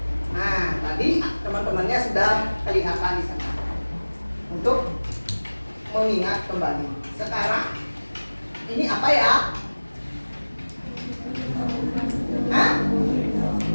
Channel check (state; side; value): inverted; both; correlation -1.00